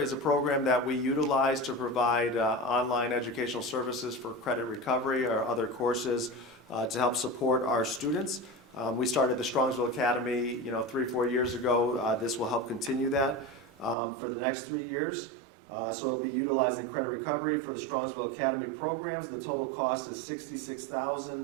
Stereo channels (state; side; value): drops out; left; at 14.0 s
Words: a program that we utilize to provide online educational services for credit recovery or other courses to help support our students. We started the Strongvsville Academy, 3-4 years ago. This will help continue that for the next 3 years. So it'll be utilizing credit recovery for the Strongvsville Academy programs. The total cost is